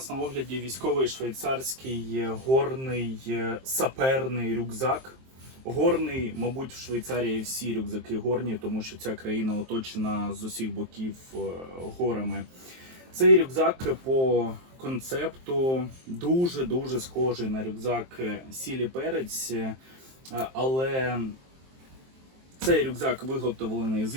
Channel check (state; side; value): late; left; 23 ms